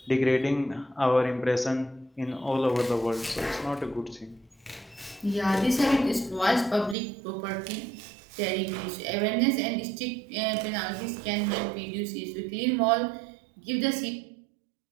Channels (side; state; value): left; drops out; at 7.0 s